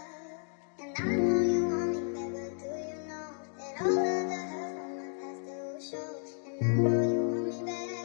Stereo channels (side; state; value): right; silent; 56 dB below the other